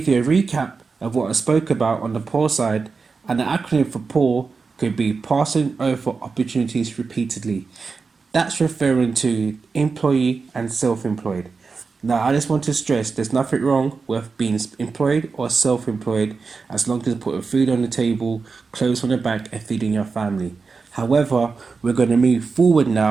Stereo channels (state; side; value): quieter; left; 4.7 dB